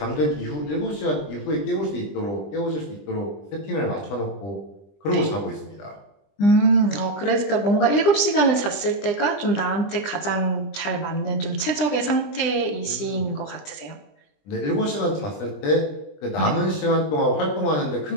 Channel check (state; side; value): late; right; 20 ms